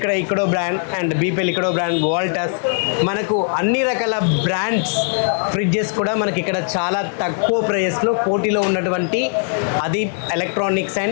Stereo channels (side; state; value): right; silent; 58 dB below the other